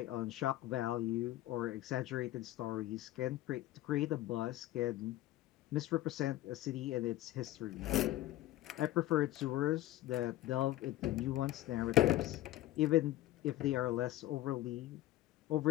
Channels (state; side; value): quieter; right; 15.2 dB